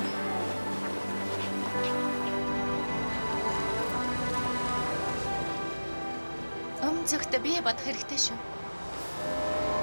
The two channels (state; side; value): inverted; both; correlation -1.00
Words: Цагт бие бодох хэрэгтэй шүү.